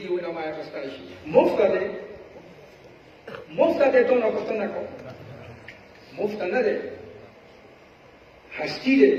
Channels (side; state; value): both; identical; correlation 1.00